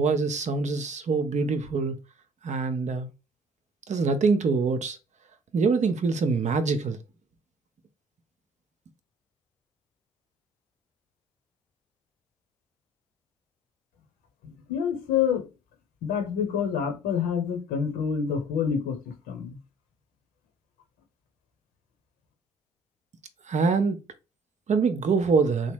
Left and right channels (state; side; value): normal; both; correlation 0.53